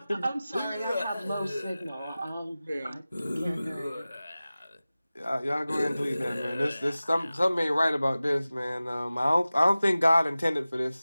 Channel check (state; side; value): inverted; both; correlation -0.97